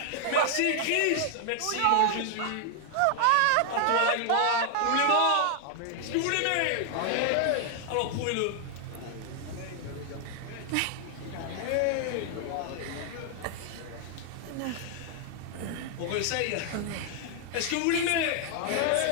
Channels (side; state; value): both; different; correlation 0.00